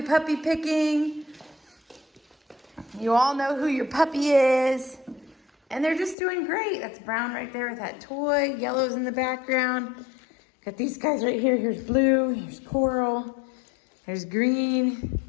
puppy picking. You all know who your puppy is. And they're just doing great. That's Brown right there with that toy. Yellow's in the background. Got these guys right here. Here's Blue, here's Coral, there's Green.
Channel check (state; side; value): drops out; right; at 6.2 s